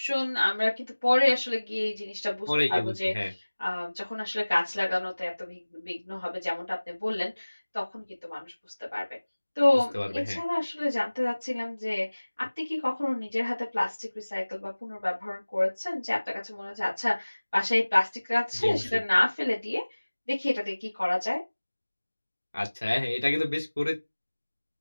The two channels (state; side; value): inverted; both; correlation -1.00